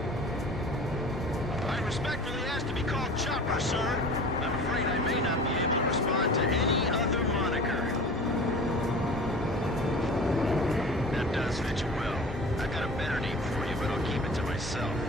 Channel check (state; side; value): normal; both; correlation 0.40